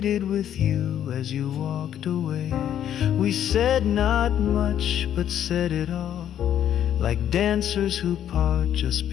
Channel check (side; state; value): right; quieter; 10.3 dB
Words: with you as you walked away. We said not much, but said it all, like dancers who part just